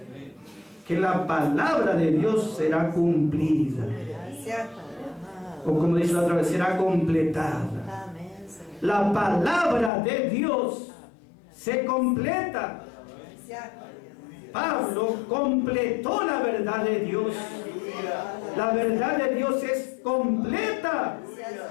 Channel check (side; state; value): right; drops out; at 9.9 s